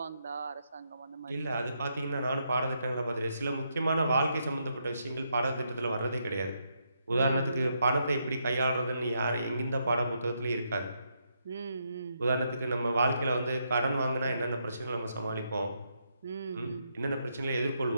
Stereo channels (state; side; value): inverted; both; correlation -0.79